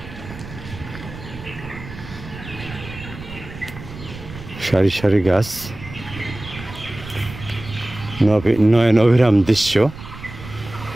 সারি সারি গাছ, নয়ন অভিরাম দৃশ্য।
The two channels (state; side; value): noise; right; rumble, 14 dB below the sound